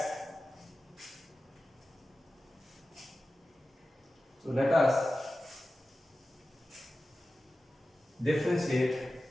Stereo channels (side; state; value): both; normal; correlation 0.94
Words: So let us differentiate